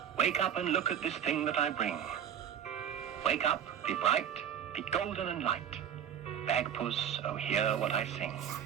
wake up and look at this thing that I bring. Wake up, be bright, be golden and light. Bagpuss, oh hear what I sing.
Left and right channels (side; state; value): left; quieter; 9.1 dB